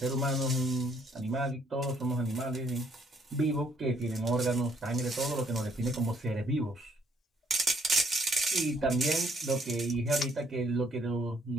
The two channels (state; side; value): normal; both; correlation 0.67